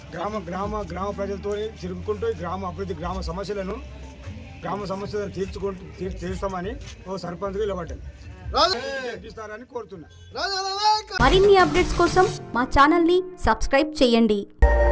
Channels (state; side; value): identical; both; correlation 1.00